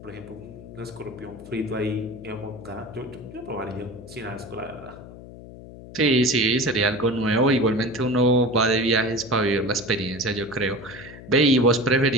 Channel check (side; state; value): left; noise; hum, 16 dB below the sound